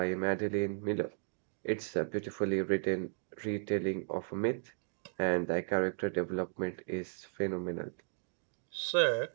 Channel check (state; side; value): silent; left; digital silence